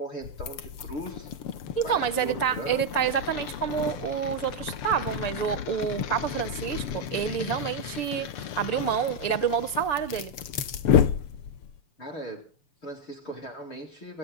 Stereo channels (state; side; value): late; right; 6.8 ms